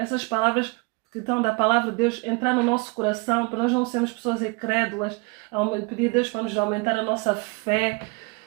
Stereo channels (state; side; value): quieter; left; 28.9 dB